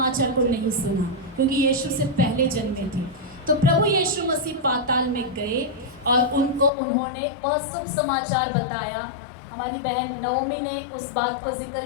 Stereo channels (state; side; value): drops out; right; at 6.7 s